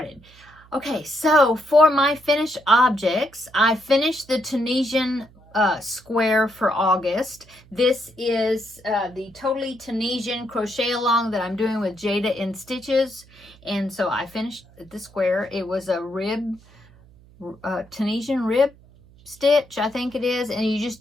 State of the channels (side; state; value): right; noise; hum, 26 dB below the sound